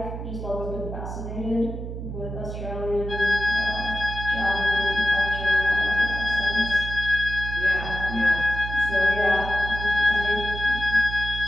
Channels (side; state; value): right; noise; hum, 7 dB below the sound